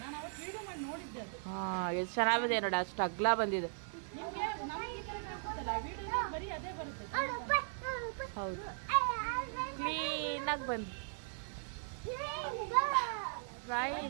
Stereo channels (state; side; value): silent; left; 52 dB below the other